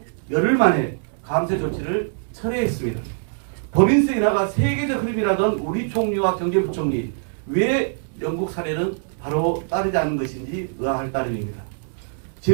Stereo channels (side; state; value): left; silent; digital silence